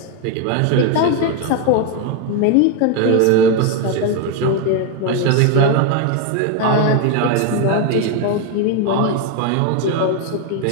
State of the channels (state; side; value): different; both; correlation 0.01